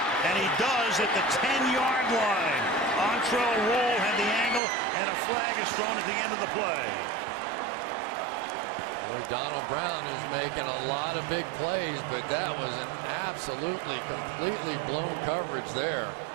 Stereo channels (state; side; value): drops out; left; at 4.6 s